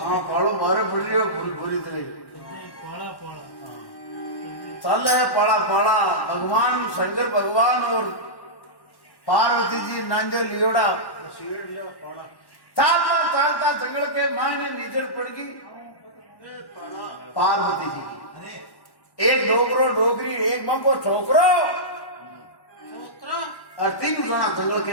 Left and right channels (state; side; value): late; right; 1.1 ms